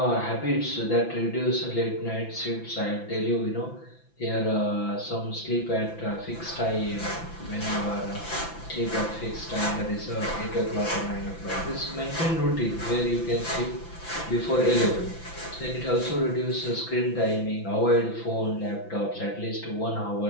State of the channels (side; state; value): right; late; 5.9 ms